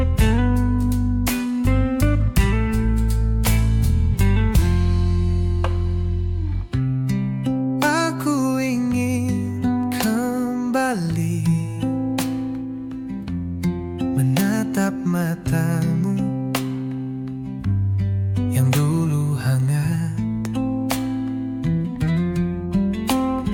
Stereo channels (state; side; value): identical; both; correlation 1.00